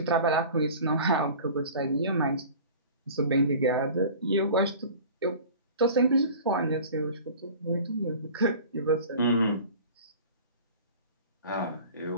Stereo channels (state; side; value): inverted; both; correlation -0.41